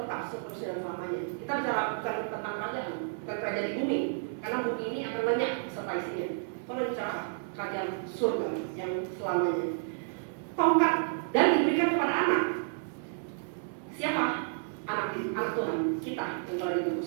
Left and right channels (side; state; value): left; silent; digital silence